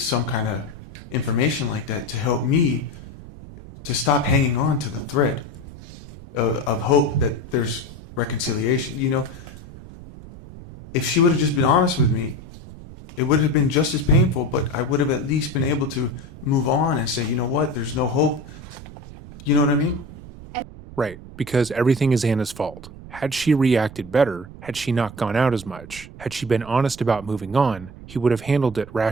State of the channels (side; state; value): right; noise; rumble, 16 dB below the sound